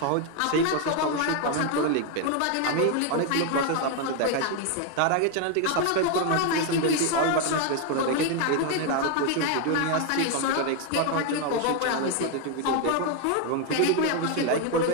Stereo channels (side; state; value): both; different; correlation 0.01